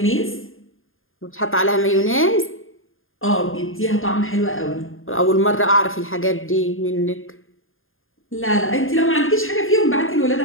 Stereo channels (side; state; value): right; late; 0.60 ms